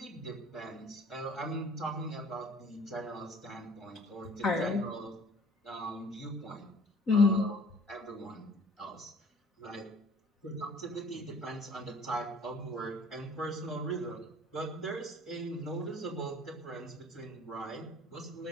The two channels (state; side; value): normal; both; correlation 0.52